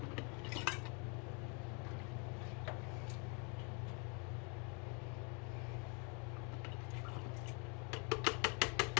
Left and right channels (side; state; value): right; quieter; 34.9 dB